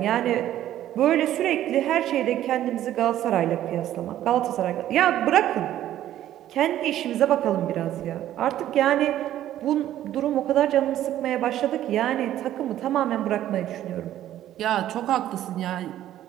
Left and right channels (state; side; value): quieter; left; 12.5 dB